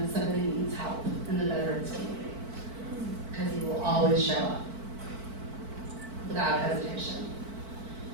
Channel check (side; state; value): left; late; 4.5 ms